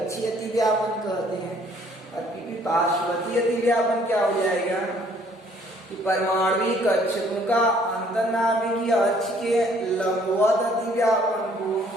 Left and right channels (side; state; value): both; normal; correlation 0.61